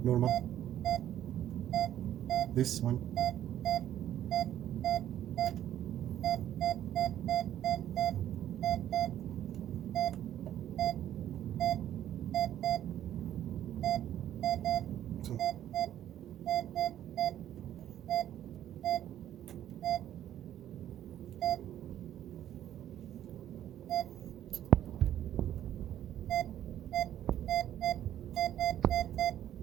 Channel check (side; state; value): left; quieter; 11.6 dB